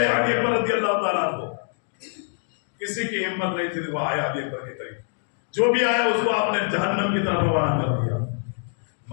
علی اکبر رضی اللہ تعالیٰ عنہ۔ کسی کی ہمت نہیں تھی، وہ آیا علی اکبر کے قریب، جو بھی آیا اس کو آپ نے جہنم کی طرف روانہ کر دیا۔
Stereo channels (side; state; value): right; silent; digital silence